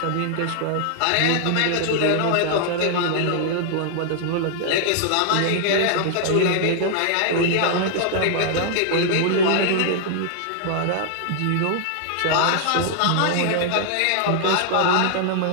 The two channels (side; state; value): both; different; correlation -0.01